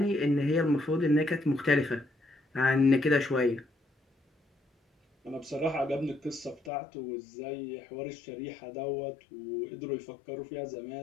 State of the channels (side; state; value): right; drops out; at 6.7 s